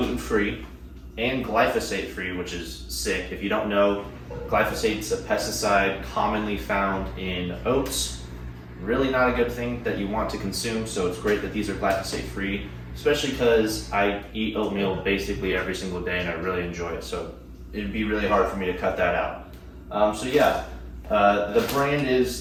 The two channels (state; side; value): identical; both; correlation 1.00